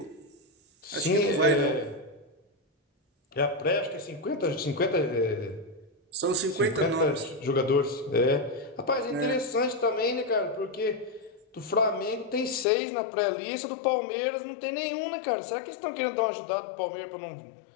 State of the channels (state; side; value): drops out; right; at 12.7 s